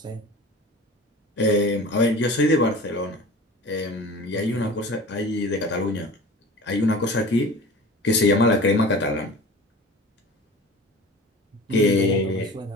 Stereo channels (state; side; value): normal; both; correlation 0.39